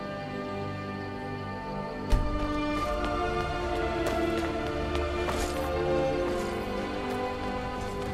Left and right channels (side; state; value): both; identical; correlation 1.00